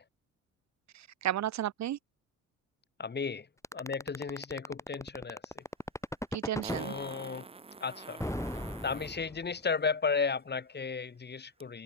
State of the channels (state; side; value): normal; both; correlation 0.03